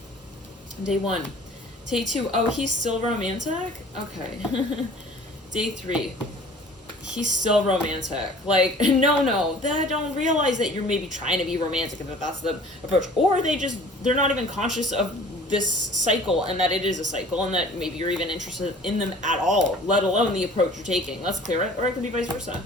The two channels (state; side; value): normal; both; correlation 0.48